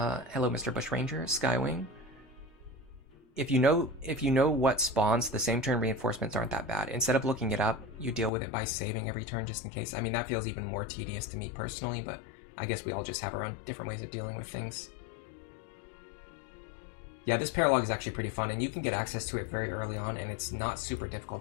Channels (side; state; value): right; drops out; at 8.3 s